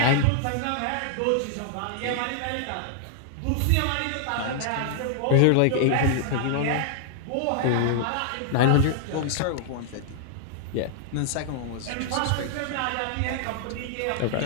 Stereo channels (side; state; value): both; different; correlation -0.01